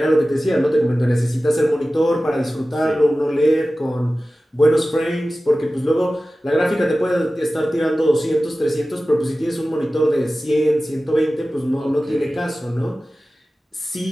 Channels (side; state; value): both; normal; correlation 0.96